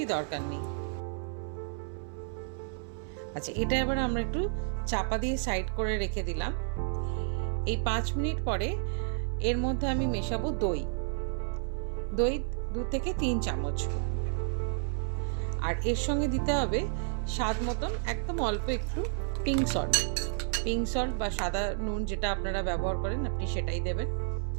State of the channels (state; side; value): silent; left; 57 dB below the other